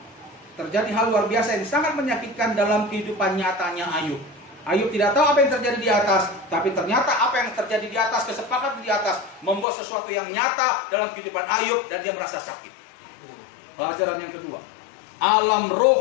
Terjadi hal luar biasa yang sangat menyakitkan dalam kehidupan nyatanya Ayub. Ayub tidak tahu apa yang terjadi di atas, tapi ternyata apa yang terjadi di atas, kesepakatan di atas, membuat sesuatu yang nyata dalam kehidupan Ayub dan dia merasa sakit. Pelajaran yang kedua, alam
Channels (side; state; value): right; drops out; at 9.7 s